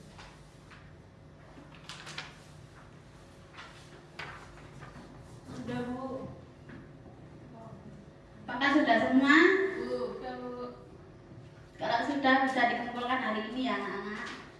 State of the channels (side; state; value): both; identical; correlation 1.00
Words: Apakah sudah semua? Udah, Bu. Kalau sudah bisa dikumpulkan hari ini ya anak-anak.